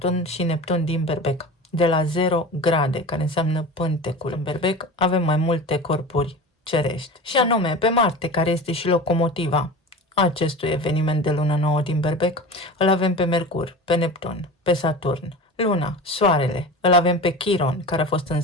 și Neptun din Berbec, de la 0 grade, care înseamnă pântecul. În Berbec avem mai multe corpuri cerești, și anume pe Marte, care este și locomotiva acestui eveniment de lună nouă din Berbec, îl avem pe Mercur, pe Neptun, pe Saturn, Luna, Soarele, îl avem pe Chiron, care a fost în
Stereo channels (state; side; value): normal; both; correlation 0.33